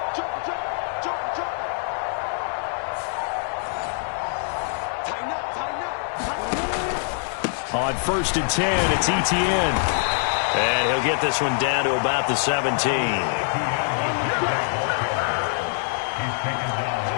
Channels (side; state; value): right; silent; digital silence